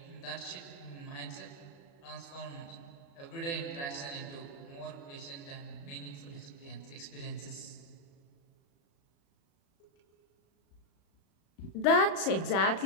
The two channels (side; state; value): right; late; 36 ms